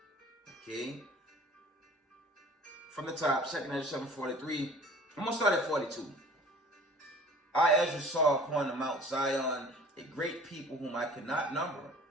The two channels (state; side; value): normal; both; correlation 0.47